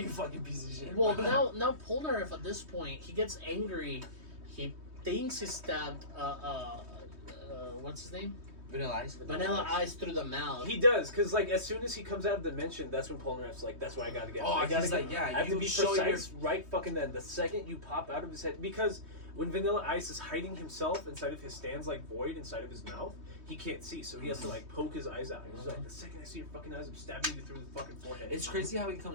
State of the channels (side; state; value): left; late; 3.2 ms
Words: fucking piece of shit." Well, now Polnareff at this point, he gets angry. He thinks he stabbed, what's his name? Vanilla Ice. Vanilla Ice through the mouth. He does, because like as soon as he comes out of the dimension, that's when Polnareff's like, "That's why I gotta get." Oh, I gotta he's get, like, yeah, I have to you be show precise right fucking then. The second you pop out of his head, because when Vanilla Ice is hiding himself inside of his stands like void inside of his mouth, he can't see, so he has to like poke his eyes out. He's like, the second I see your fucking eyes, I'm stabbing you through the fucking forehead. It's crazy how he